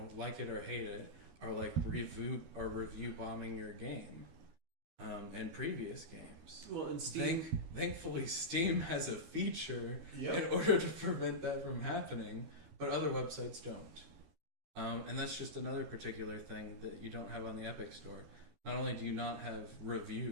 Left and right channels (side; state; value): left; late; 13 ms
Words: like it or hate it, are like review bombing your game. And previous games. Well, and Steam... Thankfully, Steam has a feature Yep. in order to prevent that from happening, but other websites don't. And that's just another particular thing that you don't have on the Epic Store. Not only do you not have